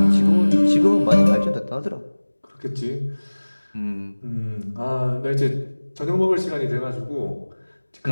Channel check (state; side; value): inverted; both; correlation -1.00